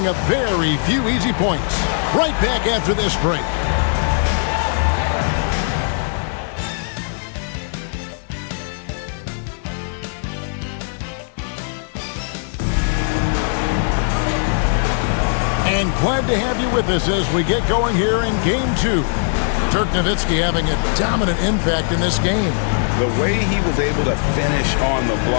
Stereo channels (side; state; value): right; silent; digital silence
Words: up very few easy points. Right back after this break. And glad to have you with us as we get going here in Game 2. Dirk Nowitzki having a dominant impact in this game. The way he was able to finish on the